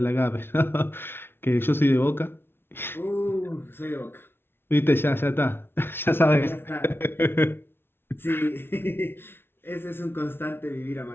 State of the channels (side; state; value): right; late; 0.11 ms